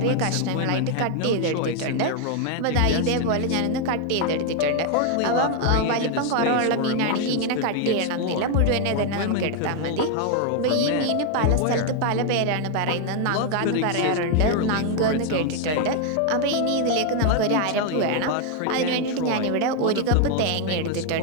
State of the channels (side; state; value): both; different; correlation 0.00